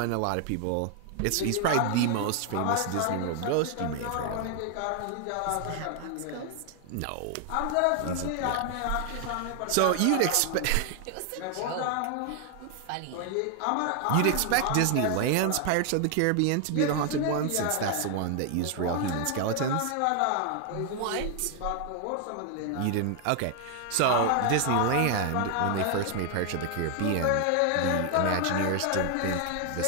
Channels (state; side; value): different; both; correlation 0.00